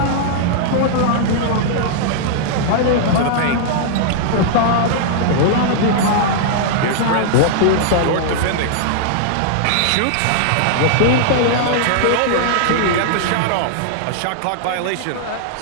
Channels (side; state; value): both; different; correlation -0.01